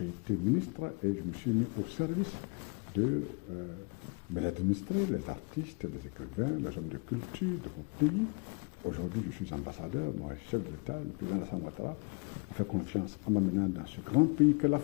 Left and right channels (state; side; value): quieter; right; 33.2 dB